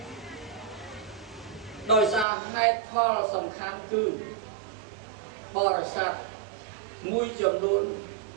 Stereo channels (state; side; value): drops out; left; at 2.2 s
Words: ដោយសារហេតុផលសំខាន់គឺបរិស័ទមួយចំនួន